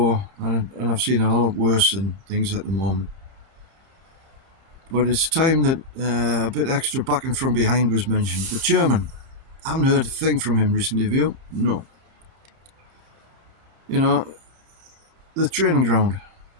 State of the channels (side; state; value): left; late; 30 ms